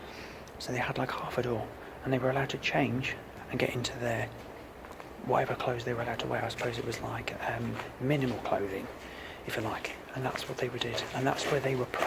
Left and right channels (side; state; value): both; identical; correlation 1.00